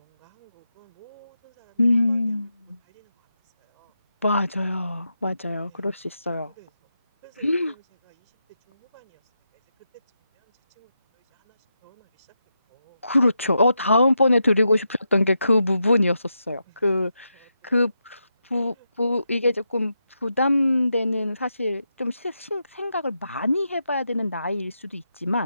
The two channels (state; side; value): inverted; both; correlation -0.85